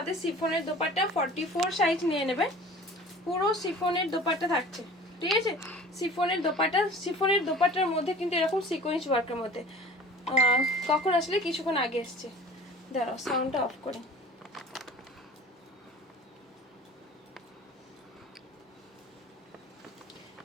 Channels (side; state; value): both; normal; correlation 0.44